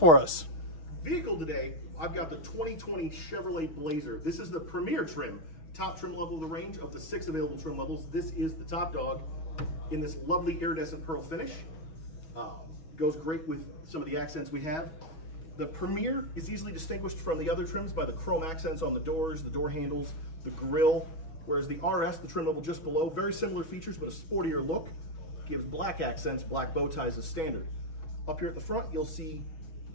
us? Vehicle today, I've got the 2020 Chevrolet Blazer. This is the premier trim, top trim level of the range. Of the 6 available trim levels, this is the top dog in this lovely iridescent pearl finish. Goes great with some of the accents we have. The premier is easily distinguished from the other trims by the chrome accents on the doors, the door handles, the grille. Whereas the RS, the trim level just below, very similar features, but a sportier look. Gives black accents, black bow ties as standard. Up here at the front, you'll see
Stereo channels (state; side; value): late; right; 6.2 ms